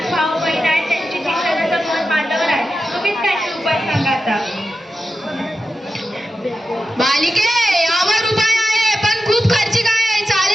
भाऊ बहीण आहेत, त्यांची शिक्षणाचा मन माझ्यावर आहे. तुम्हीच काहीतरी उपाय सांगा आता. बालिके, यावर उपाय आहे, पण खूप खर्चिक आहे.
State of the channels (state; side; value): normal; both; correlation 0.91